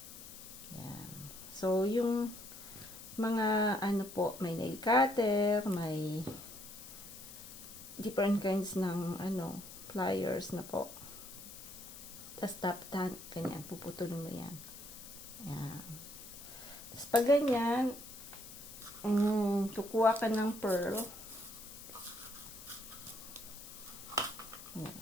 Yan. So, yung mga po, may nail cutter, may different kinds ng pliers na po. Tapos taptan, ganyan, puputulin mo yan. Yan. Tapos pag ganyan, kukuha ka ng pearl. Yan,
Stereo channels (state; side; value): noise; left; hiss, 14 dB below the sound